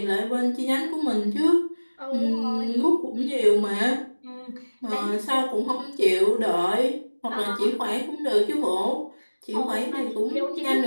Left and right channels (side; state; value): both; inverted; correlation -1.00